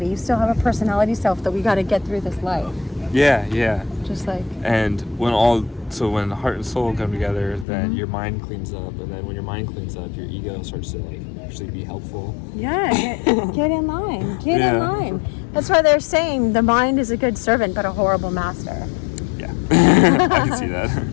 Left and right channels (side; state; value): right; drops out; at 7.7 s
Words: You still have a personality self that we got to get through this life. Yeah. Just like, And when heart and soul come together, then your mind cleans up, and then when your mind cleans up, your ego starts to like actually be helpful. yeah, get in line. Get in line. That's why they're saying the mind is a good servant but a horrible master. Yeah. I can see that.